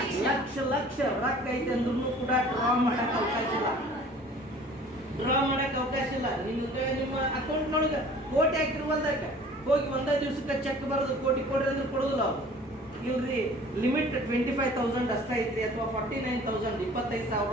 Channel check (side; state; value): both; normal; correlation 0.48